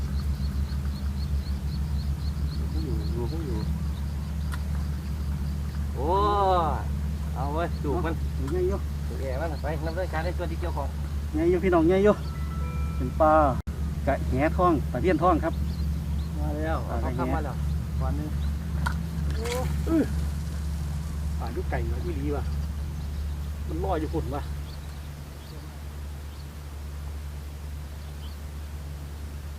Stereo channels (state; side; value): identical; both; correlation 1.00